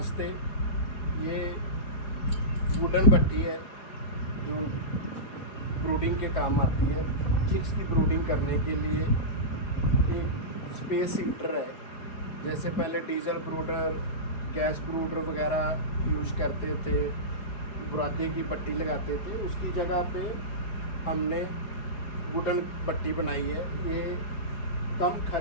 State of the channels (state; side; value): late; right; 4.8 ms